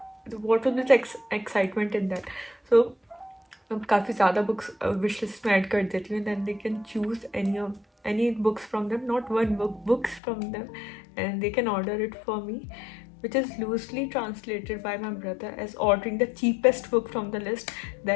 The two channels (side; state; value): right; drops out; at 10.2 s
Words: what will be the excitement in that. So अब काफ़ी ज़्यादा books wish list में add कर देती हूँ, then they can choose any books from them, not one book, books from them, and they can order it for me, which is loosely translated by my brother as ordering the cheapest book from the list.